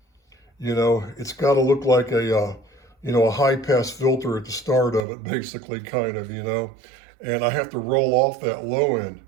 You know, it's got to look like a high pass filter at the start of it, basically, kind of, and I have to roll off that low end.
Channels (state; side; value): drops out; left; at 5.0 s